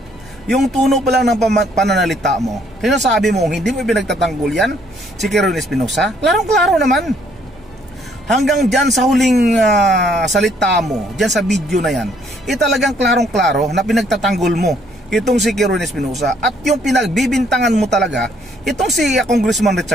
Yung tuno pa lang ng pananalita mo, sinasabi mo hindi mo pinagtatanggol yan si Kirwin Espinosa. Klarong-klaro naman. Hanggang dyan sa huling salita mo, dyan sa video na yan, talagang klarong-klaro na pinagtatanggol mo itong si Kirwin Espinosa. At yung pinagbibintangan mo talaga itong si Congressman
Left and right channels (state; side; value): normal; both; correlation 0.66